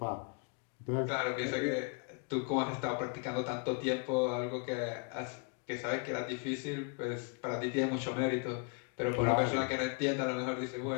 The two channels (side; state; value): right; quieter; 35.1 dB